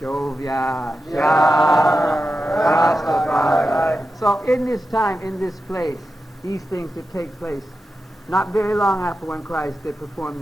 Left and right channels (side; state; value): both; normal; correlation 0.91